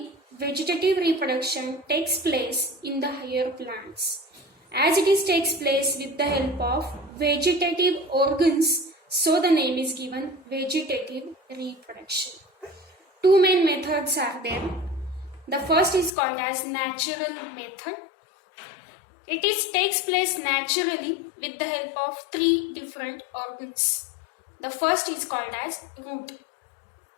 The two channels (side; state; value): right; drops out; at 16.1 s